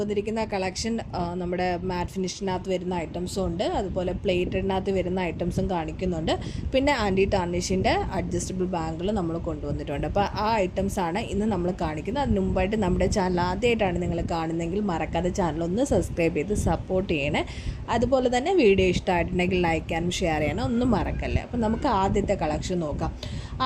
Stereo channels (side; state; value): both; identical; correlation 1.00